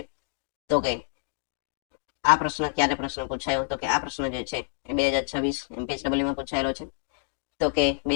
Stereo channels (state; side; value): silent; right; digital silence